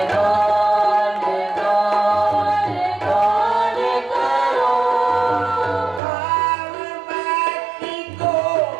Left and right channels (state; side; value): drops out; left; at 6.0 s